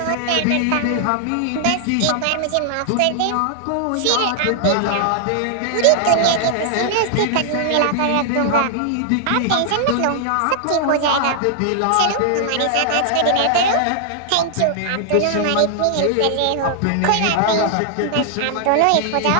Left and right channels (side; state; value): both; different; correlation 0.00